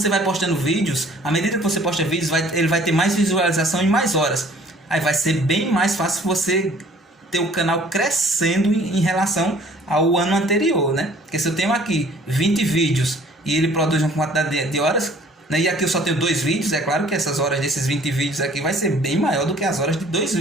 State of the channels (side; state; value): both; normal; correlation 0.54